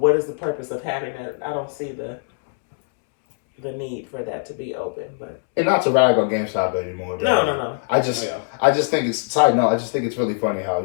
is the purpose of having that? I don't see the need for that to be open. But And not to rag on GameStop anymore. but no. I just Oh, I just think it's side note. I just think it's really funny how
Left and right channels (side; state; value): right; silent; 64 dB below the other